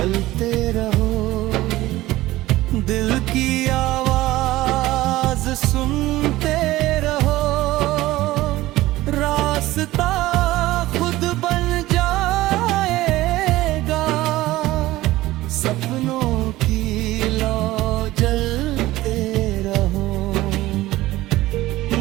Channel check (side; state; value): left; quieter; 17.1 dB